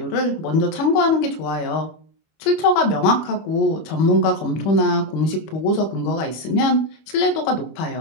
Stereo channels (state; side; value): late; right; 25 ms